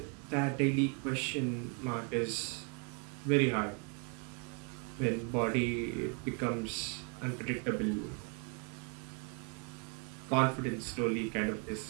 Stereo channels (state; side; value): quieter; left; 38.3 dB